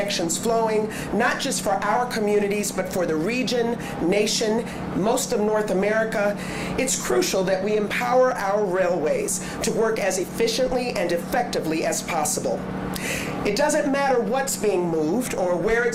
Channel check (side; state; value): both; identical; correlation 1.00